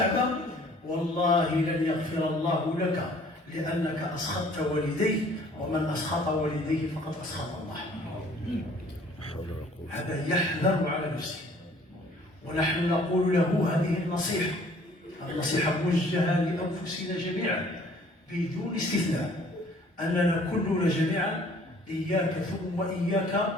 والله لن يغفر الله لك، لأنك أسخطت والديه، ومن أسخط والديه فقد أسخط الله. هذا يحذر على نفسه، ونحن نقول له هذه النصيحة، النصيحة موجهة لأنفسنا جميعا بدون استثناء، أننا كلنا جميعا إياك ثم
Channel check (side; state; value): both; normal; correlation 0.55